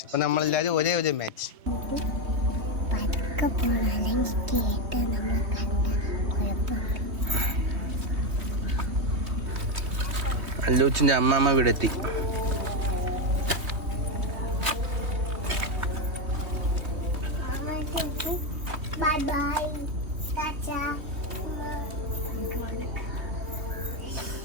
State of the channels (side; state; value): left; late; 3.2 ms